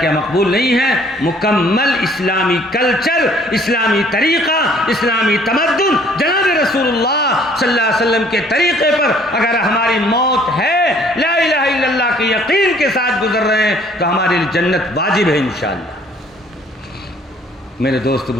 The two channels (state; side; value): normal; both; correlation 0.59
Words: مقبول نہیں ہے۔ مکمل اسلامی کلچر، اسلامی طریقہ، اسلامی تمدن، جناب رسول اللہ صلی اللہ علیہ وسلم کے طریقے پر اگر ہماری موت ہے، لا الہ الا اللہ کے یقین کے ساتھ گزر رہے ہیں، تو ہمارے لیے جنت واجب ہے انشاءاللہ۔ میرے دوست